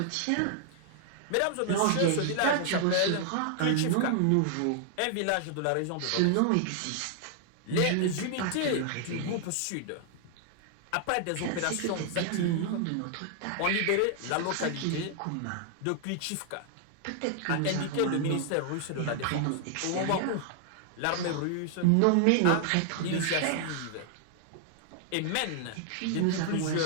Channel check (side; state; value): both; different; correlation 0.00